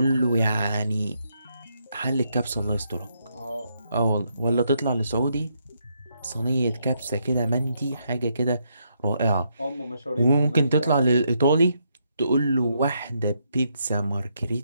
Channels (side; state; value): both; inverted; correlation -0.77